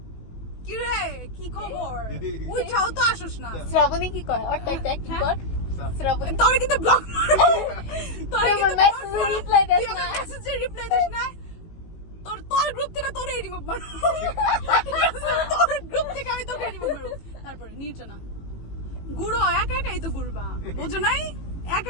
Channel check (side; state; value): right; late; 18 ms